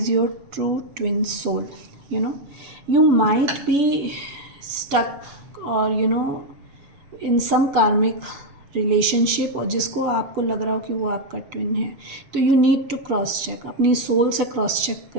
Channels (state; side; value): late; left; 7.1 ms